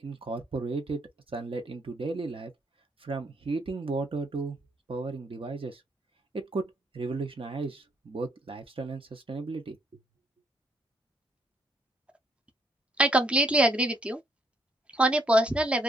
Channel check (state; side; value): normal; both; correlation 0.71